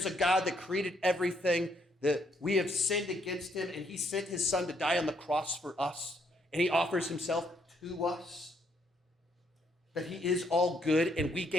a God that created everything, that we have sinned against him, and he sent his son to die on the cross for us, and he offers himself to us, that he is all good, and we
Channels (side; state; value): both; normal; correlation 0.71